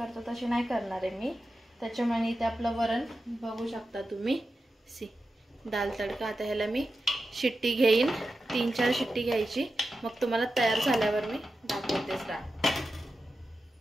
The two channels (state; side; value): normal; both; correlation 0.91